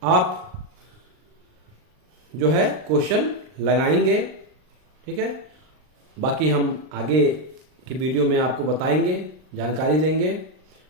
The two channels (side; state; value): left; late; 39 ms